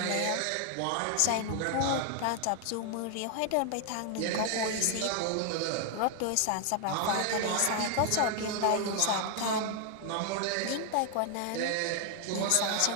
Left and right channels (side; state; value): both; different; correlation 0.00